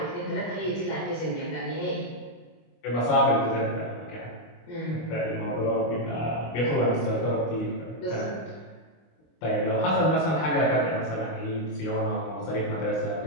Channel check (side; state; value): right; late; 25 ms